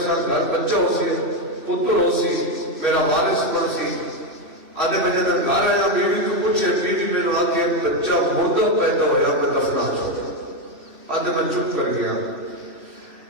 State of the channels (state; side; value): late; left; 3.1 ms